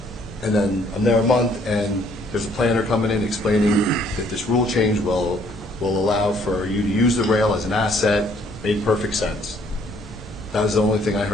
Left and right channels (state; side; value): normal; both; correlation 0.63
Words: And then I'm there a month, and there's a planner coming in explaining that this rule change will allow for you to use the rail as an asset. Made perfect sense. That was the only thing I